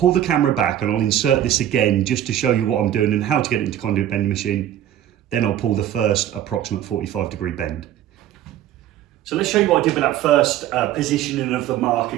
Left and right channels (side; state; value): left; quieter; 11.7 dB